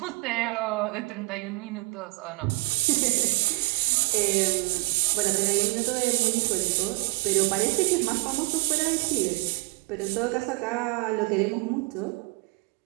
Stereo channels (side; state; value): left; quieter; 26.6 dB